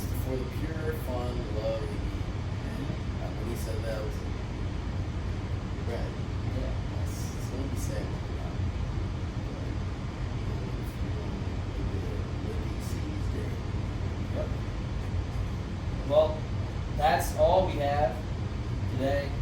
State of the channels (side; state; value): both; identical; correlation 1.00